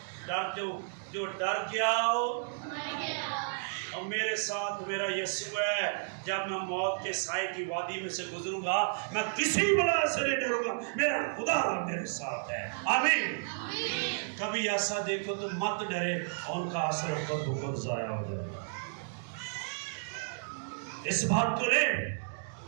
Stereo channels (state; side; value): silent; left; digital silence